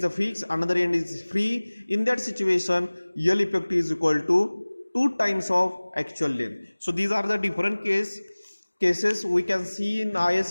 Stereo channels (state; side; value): inverted; both; correlation -1.00